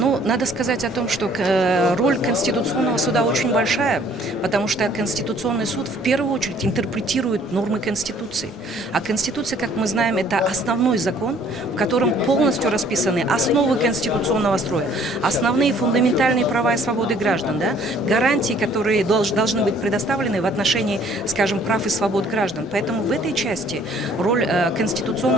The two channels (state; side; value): normal; both; correlation 0.58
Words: надо сказать о том, что роль Конституционного суда очень большая, потому что Конституционный суд в первую очередь интерпретирует нормы Конституции. А Конституция, как мы знаем, это основной закон, в котором полностью расписаны основы конституционного строя, основные фундаментальные права и свободы граждан, да, гарантии, которые должны быть предоставлены в отношении, скажем, прав и свобод граждан. Поэтому в этой части роль